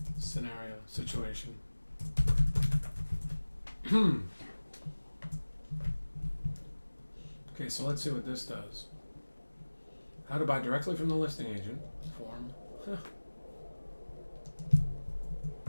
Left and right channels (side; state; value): both; inverted; correlation -1.00